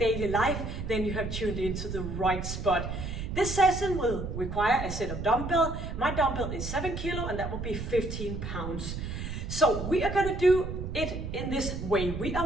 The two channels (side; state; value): right; noise; rumble, 5 dB below the sound